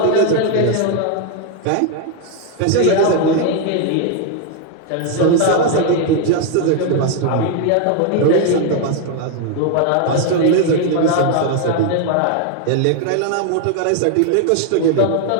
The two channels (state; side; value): different; both; correlation 0.00